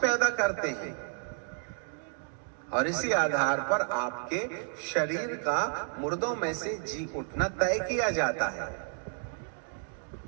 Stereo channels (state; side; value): silent; left; 57 dB below the other